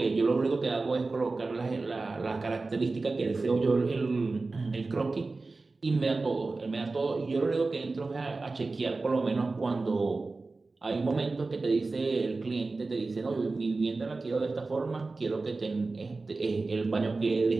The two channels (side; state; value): left; quieter; 3.6 dB